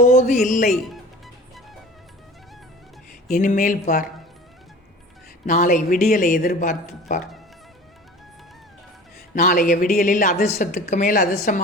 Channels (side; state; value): both; normal; correlation 0.41